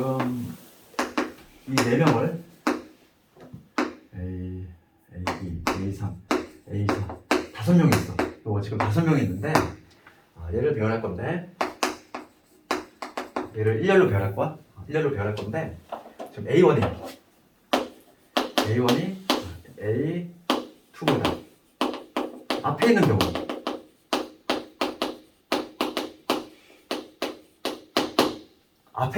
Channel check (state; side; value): identical; both; correlation 1.00